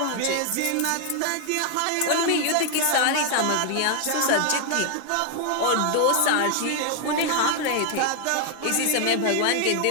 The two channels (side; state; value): both; different; correlation 0.00